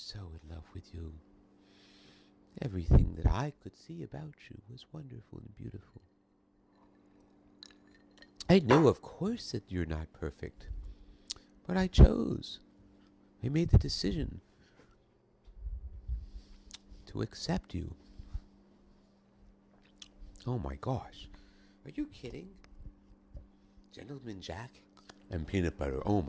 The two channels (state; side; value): identical; both; correlation 1.00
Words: so in love with you. Everything that I could see about you was wonderful and beautiful. I know, of course, that you're not perfect. But I chose. I made the decision to accept you. Oh my gosh. Are you kidding? Gentleman Jack and peanut butter. Oh